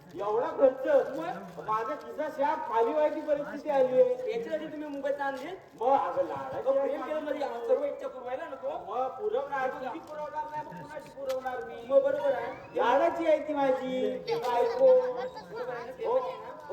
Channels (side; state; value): both; identical; correlation 1.00